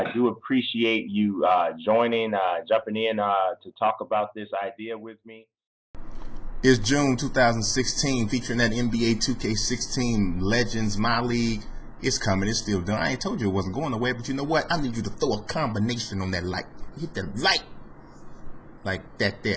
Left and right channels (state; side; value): identical; both; correlation 1.00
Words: do appreciate you jumping in to talk about this idea with me. It's June 2016, featuring that NBA 2K16 Legends, My League. It's coming. It's still done. I ain't told you it wasn't going away, but you know what? I need you to throw a combination on that like. Hit the like. Like that